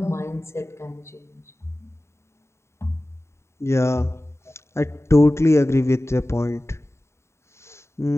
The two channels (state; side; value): late; right; 0.13 ms